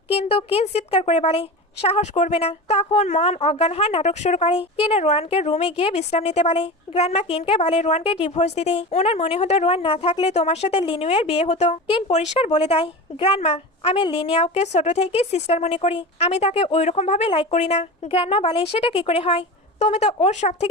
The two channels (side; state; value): both; normal; correlation 0.29